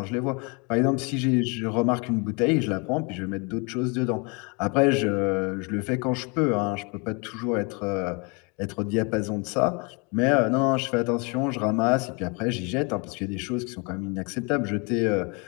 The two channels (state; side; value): quieter; right; 31.5 dB